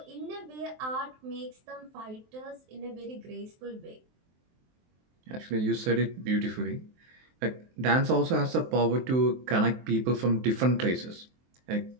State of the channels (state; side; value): late; left; 23 ms